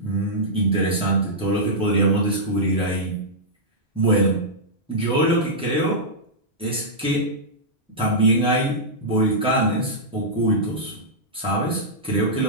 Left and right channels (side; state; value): both; normal; correlation -0.11